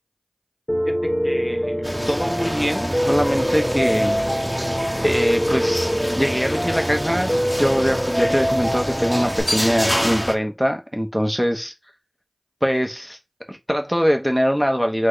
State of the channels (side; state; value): both; identical; correlation 1.00